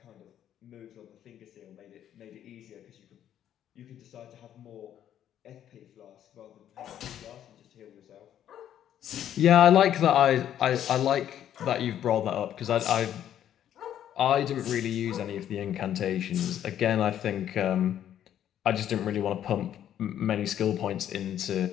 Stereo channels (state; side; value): quieter; right; 10.6 dB